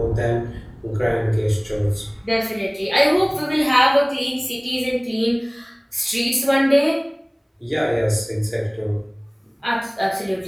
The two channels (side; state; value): both; identical; correlation 1.00